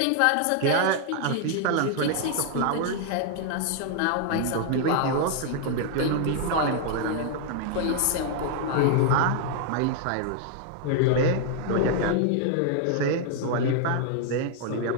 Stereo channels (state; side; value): different; both; correlation 0.00